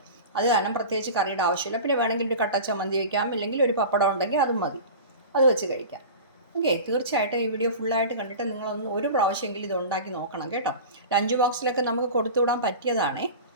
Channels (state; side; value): inverted; both; correlation -0.33